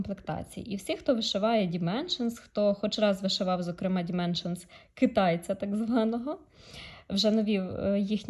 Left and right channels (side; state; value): both; identical; correlation 1.00